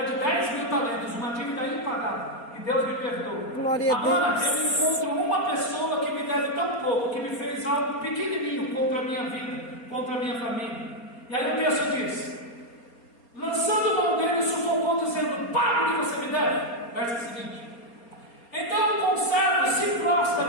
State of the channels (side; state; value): right; late; 4.3 ms